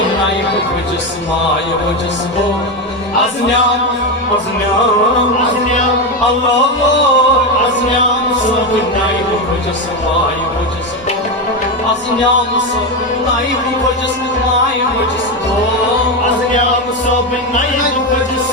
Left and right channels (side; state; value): both; normal; correlation 0.12